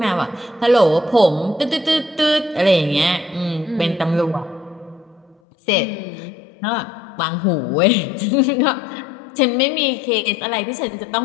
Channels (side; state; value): right; drops out; at 5.4 s